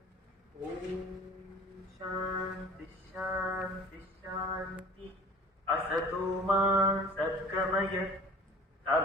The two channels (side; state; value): both; normal; correlation 0.44